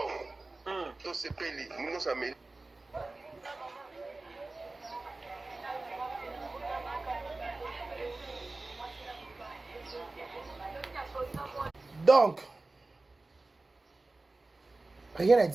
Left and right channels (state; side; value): quieter; left; 3.2 dB